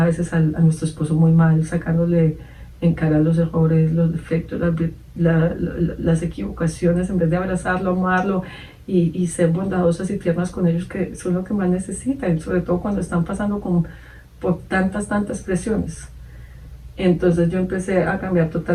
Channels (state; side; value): identical; both; correlation 1.00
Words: veces a nuestro esposo muy mal, sacándole en cara los errores, los defectos, las equivocaciones, en vez de abrazarlo, amarlo y ser bondadosas y tiernas con ellos, que son lo que más necesitan, sobre todo cuando están pasando por tantas presiones. Entonces yo empecé a cambiar